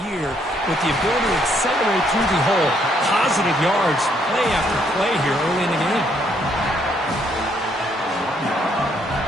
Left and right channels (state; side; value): normal; both; correlation 0.70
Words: year with the ability to accelerate through the hole. Positive yards, play after play here early in the game.